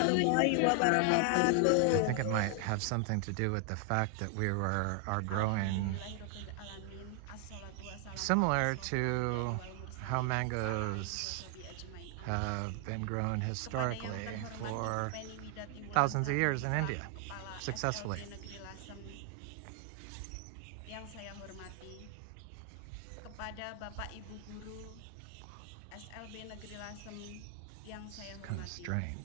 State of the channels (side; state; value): both; different; correlation 0.00